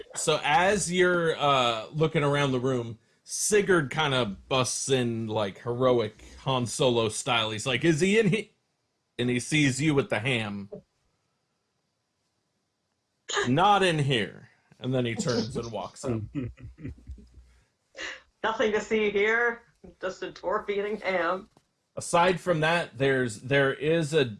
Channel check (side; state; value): both; identical; correlation 1.00